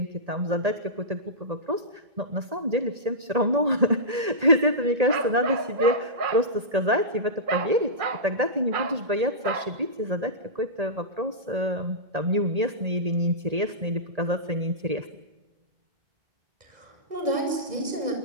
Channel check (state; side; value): late; left; 1.8 ms